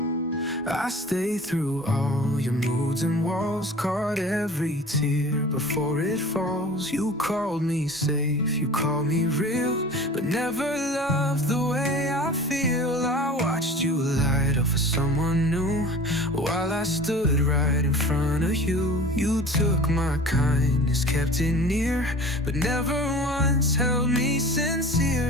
I stayed through all your moods and walls, caught every tear before it falls. You called me safe, you called me real, but never loved the way I feel. I watched you light up for someone new, while I stood right in front of you. You took my kindness, kept it near, but never once held me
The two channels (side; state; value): both; normal; correlation 0.41